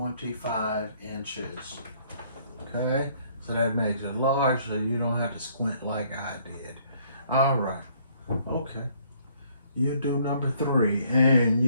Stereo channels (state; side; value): inverted; both; correlation -0.63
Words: inches. Okay, so that makes it large so you don't have to squint like I did. All right, okay. You do number 3 and